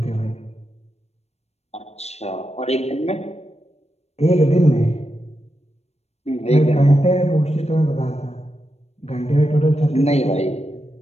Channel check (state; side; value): late; right; 0.31 ms